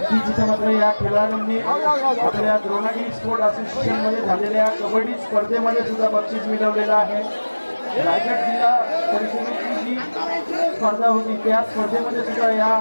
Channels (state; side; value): inverted; both; correlation -1.00